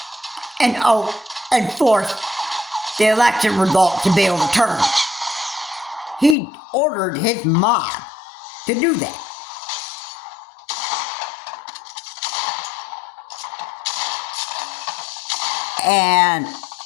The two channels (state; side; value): drops out; right; at 6.4 s